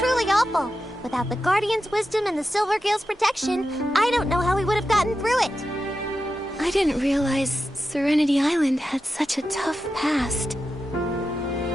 awful. Without the Guardian's wisdom and the Silvergale's protection, I don't know how we would have gotten through it. I didn't realize Serenity Island had such a tough past.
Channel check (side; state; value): both; normal; correlation 0.90